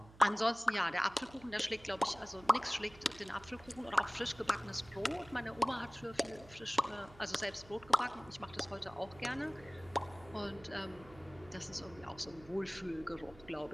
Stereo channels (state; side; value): noise; right; hum, 21 dB below the sound